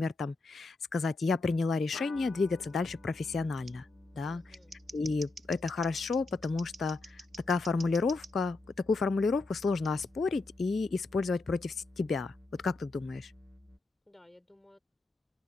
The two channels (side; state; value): right; quieter; 3.7 dB